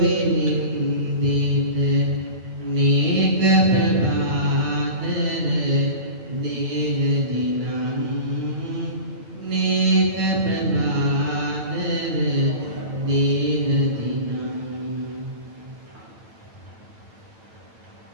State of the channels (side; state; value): left; late; 9.0 ms